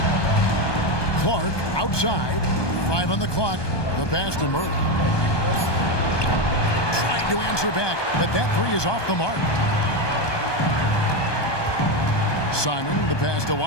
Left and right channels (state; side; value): late; right; 1.2 ms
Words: Clark outside. 5 on the clock. The pass to Murray. Trying to answer back, but that three is off the mark. Simon, the pass to